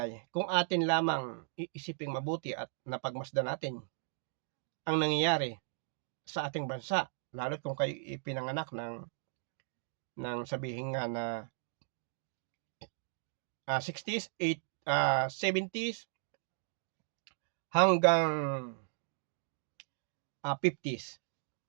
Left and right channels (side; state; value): left; silent; digital silence